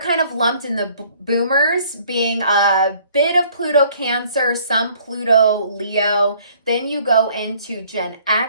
kind of lumped in the boomers, being a bit of Pluto Cancer, some Pluto Leo. Then you go into Gen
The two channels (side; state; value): both; inverted; correlation -0.58